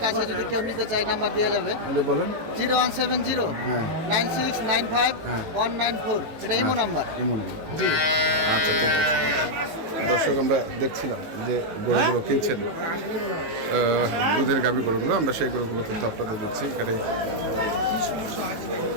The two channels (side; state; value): left; late; 19 ms